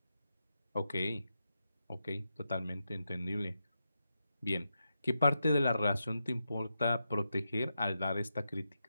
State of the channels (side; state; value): both; inverted; correlation -0.87